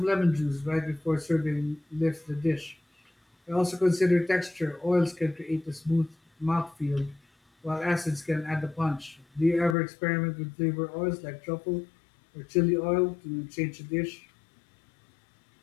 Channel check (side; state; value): right; drops out; at 9.8 s